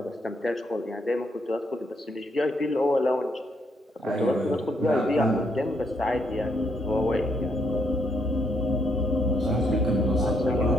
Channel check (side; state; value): both; normal; correlation 0.74